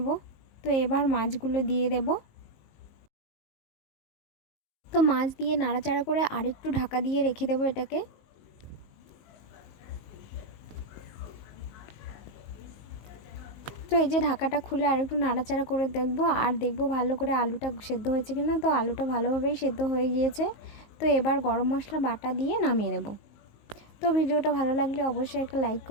তো এবার মাছগুলো দিয়ে দেব। তো মাছ দিয়ে নাড়াচাড়া করে আরেকটু ঢাকা দিয়ে রেখে দেব এটাকে। তো এই যে ঢাকাটা খুলে আরেকটু নাড়াচাড়া করে দেখব ভালো করে আলুটা সেদ্ধ হয়েছে কিনা। তো আলুটা ভালোভাবেই সেদ্ধ হয়ে গিয়েছে। তো এবার গরম মশলা বাটা দিয়ে নামিয়ে নেব। তো ভিডিওটা ভালো লাগলে অবশ্যই একটা লাইক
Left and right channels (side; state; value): right; late; 19 ms